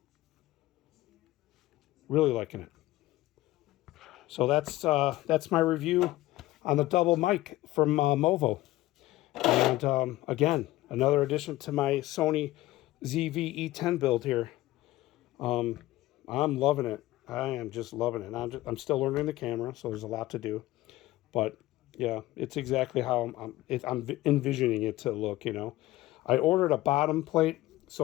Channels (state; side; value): quieter; right; 17.1 dB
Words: Really liking it. So that's my review on the DoubleMic from Movo. And again, another addition to my Sony ZV-E10 build here. I'm loving it. I am just loving it. I'm still learning the camera, so there's a lot to do. But yeah, it's exactly how I'm envisioning it to look, you know. I ordered a bottom plate,